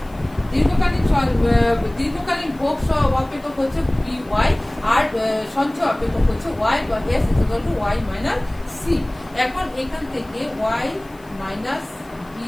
দীর্ঘকালীন ভোগ অপেক্ষক হচ্ছে dy, আর সঞ্চয় অপেক্ষক হচ্ছে y বা s is equal to y minus c। এখন এখান থেকে y minus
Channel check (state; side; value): noise; left; hiss, 29 dB below the sound